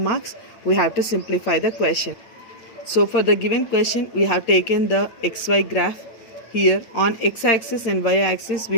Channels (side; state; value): right; late; 9.0 ms